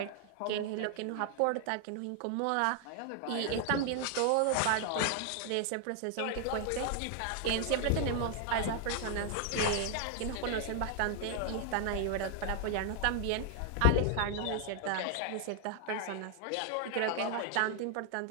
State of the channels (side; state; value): both; different; correlation 0.00